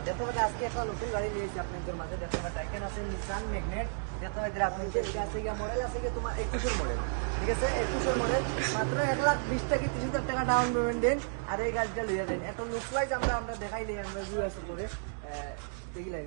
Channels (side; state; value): left; silent; digital silence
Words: দেখতে পাচ্ছেন আজকে একটা নতুন গাড়ি নিয়েছি আপনাদের মাঝে। দেখতে পাচ্ছেন টাইকেন আছে, নিসান ম্যাগনেট। দেখতে পাচ্ছেন আপনাদের এটা আছে কি মডেল আছে কি তোমার 21 এর মডেল। ঠিক আছে, 21 এর মডেল মাত্র 1,20,000 থেকে 30,000 টাকা ডাউন পেমেন্ট দেন আর এই গাড়িটা লইয়া দেন। এত মিসওয়াইজ আমরা দেখাই দেই, আমরা রিভিউ আছে করে দেখিলেন